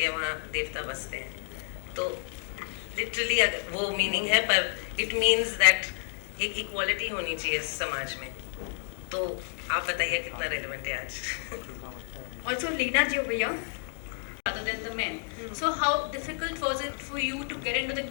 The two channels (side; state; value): right; silent; 58 dB below the other